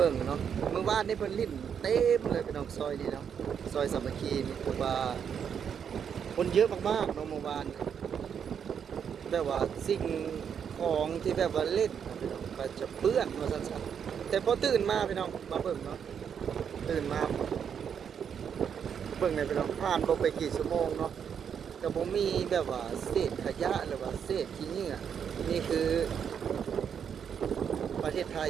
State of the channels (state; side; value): quieter; left; 7.7 dB